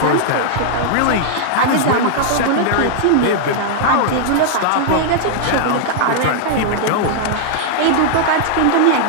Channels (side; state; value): both; different; correlation -0.01